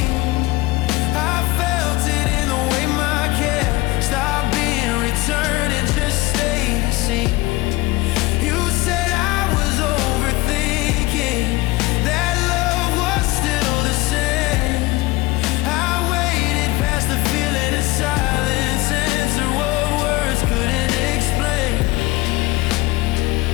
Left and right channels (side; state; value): right; quieter; 20.0 dB